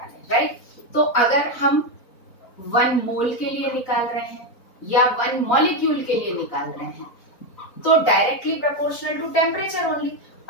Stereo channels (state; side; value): late; right; 4.1 ms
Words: राइट, तो अगर हम 1 मोल के लिए निकाल रहे हैं या 1 मॉलिक्यूल के लिए निकाल रहे हैं, तो directly proportional to temperature only